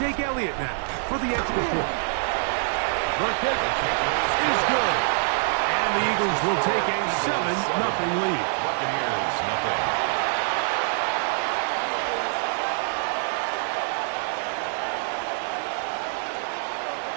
Elliott now for the extra point. The kick is good. And the Eagles will take a 7-0 lead. Buccaneers, nothing.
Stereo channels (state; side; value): silent; left; 55 dB below the other